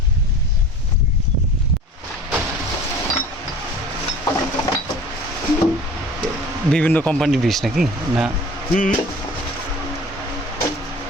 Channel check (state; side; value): normal; both; correlation 0.43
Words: বিভিন্ন কোম্পানির বীজ নাকি না? হুম,